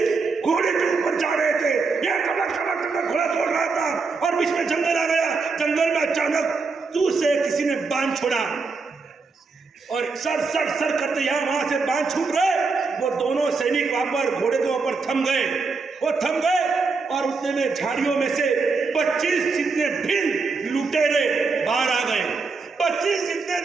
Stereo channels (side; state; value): left; quieter; 4.4 dB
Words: घोड़े के ऊपर जा रहे थे, ये कमक घोड़ा दौड़ रहा था और बीच में जंगल आ गया। जंगल में अचानक तू से किसी ने बांध छोड़ा और सर करते यहाँ वहां से बांध छूट रहे। वो दोनों सैनिक वहां पर घोड़े के ऊपर थम गए और उतने में झाड़ियों में से 25 जितने भील लुटेरे बाहर आ गए। 25 जितने